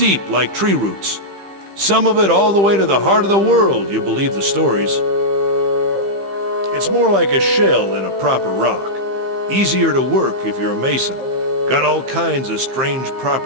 like tree roots. Some of it all the way to the heart of the world, you believe the stories. It's more like a shell than a proper rock. Easier to work if you're a mason. Got all kinds of strange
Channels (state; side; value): late; left; 15 ms